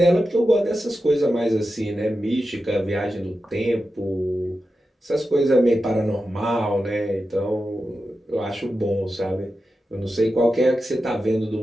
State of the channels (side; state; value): both; normal; correlation 0.91